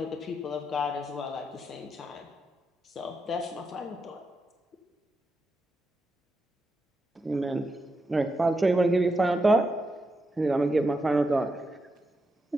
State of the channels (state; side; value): normal; both; correlation 0.85